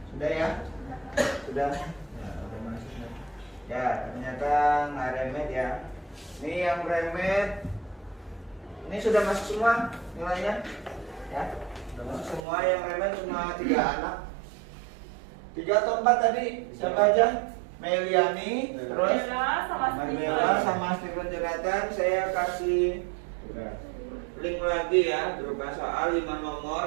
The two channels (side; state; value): left; drops out; at 12.4 s